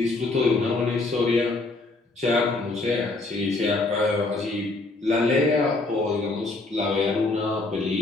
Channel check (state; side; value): quieter; right; 3.3 dB